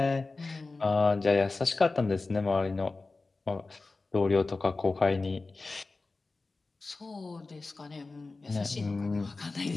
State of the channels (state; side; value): quieter; right; 3.6 dB